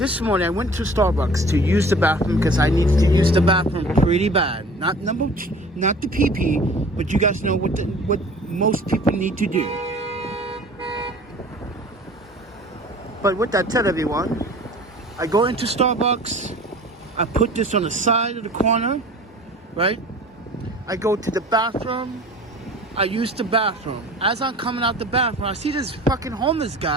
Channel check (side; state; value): both; normal; correlation 0.45